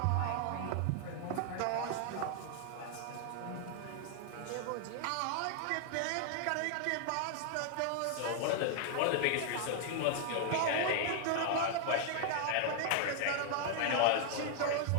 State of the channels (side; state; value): both; different; correlation 0.00